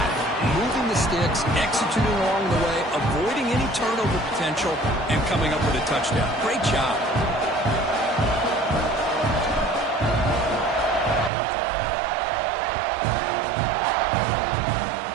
Moving the sticks, executing along the way, avoiding any turnover potential, and coming up with a touchdown. Great job.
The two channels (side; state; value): left; drops out; at 11.3 s